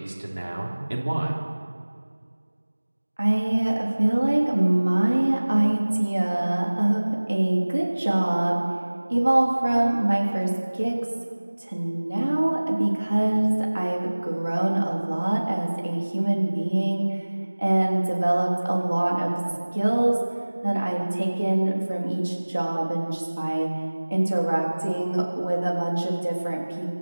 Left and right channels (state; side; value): inverted; both; correlation -1.00